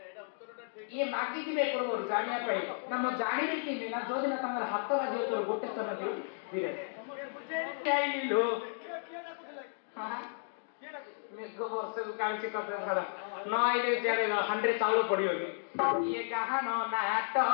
ଇଏ ମାଗିଥିବେ ପୂର୍ବରୁ ଜାଣିବା ପାଇଁ ନା ମୁଁ ଜାଣିବି କେମିତି ନା ଯୋଉଦିନ ତାଙ୍କର ହାତ ବାଜିବ ତୋର ଗୋଟେ ସ୍ତନ ଦିଅ ହିରେ ମେଘ ବର୍ଷକୁ କାଳୁଛି କଥା ଛାଡ ନ ଆଇଲେ ଚାଲେ ହାଣ୍ଡିରେ ଚାଉଳ ପଡିବନି ଇଏ ଗାହାନ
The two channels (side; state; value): right; silent; digital silence